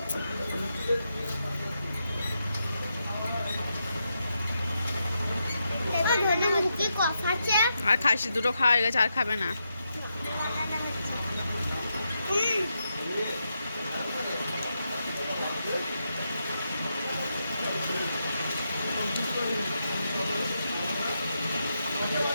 কি কথা আছে? আর খাসি দুটো খাওয়া হয়ে গেছে, আর খাবে না।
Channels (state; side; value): inverted; both; correlation -0.84